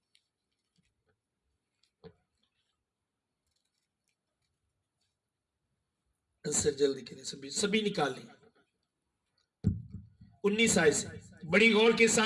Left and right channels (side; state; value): both; identical; correlation 1.00